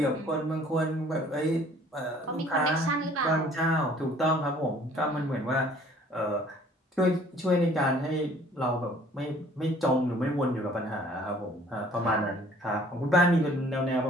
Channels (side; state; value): both; normal; correlation 0.55